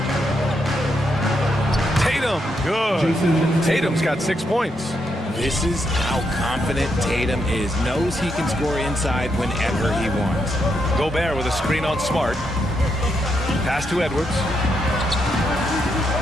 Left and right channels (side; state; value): both; normal; correlation 0.80